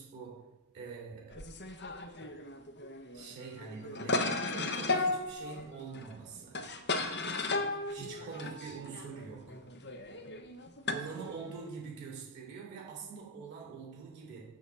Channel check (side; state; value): both; normal; correlation -0.17